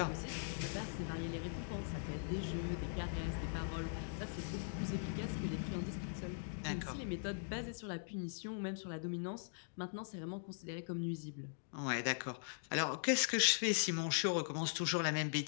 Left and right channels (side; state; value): right; silent; digital silence